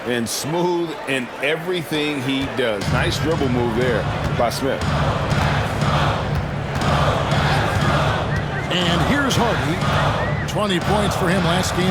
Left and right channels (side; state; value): both; identical; correlation 1.00